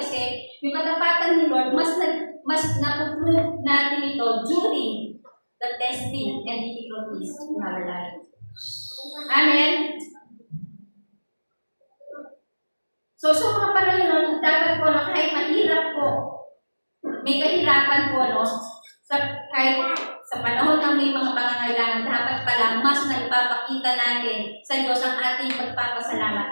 yung katapatan ni Lord, mas napuprove natin ito during the testing and difficulties in our life. Amen? So mga panahon nun, dapat po na kahit mahirap po, may kahirapan po, no? Kahit sa panahon ng may mga pangangailangan, dapat pala mas na ipapakita natin sa Diyos ang ating pagpapasalamat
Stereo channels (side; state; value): both; inverted; correlation -1.00